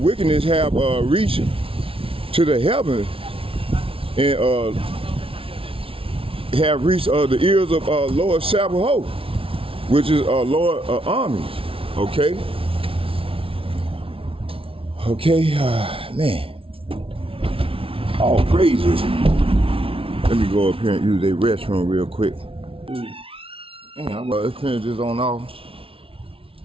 have reached to the heavens and have reached the ears of Lord Sabaoth, which is Lord armies, okay? Okay, man, all praises. Let me go up here and use their restroom real quick. Damn, let's finish this on off.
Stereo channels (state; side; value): late; left; 0.26 ms